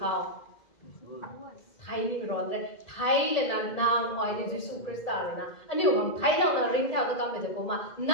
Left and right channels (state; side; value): late; right; 1.7 ms